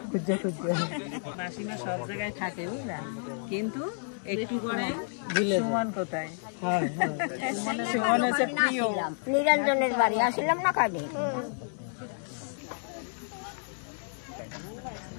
খুঁজে মাসিমা সব জায়গায় থাকে বুঝলা কিন্তু একটু করে সুমন কোথায় হ্যাঁ হ্যাঁ সুমন হচ্ছে প্রিয় নিরঞ্জনের বাড়ি আসলাম না কাজে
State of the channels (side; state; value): right; silent; digital silence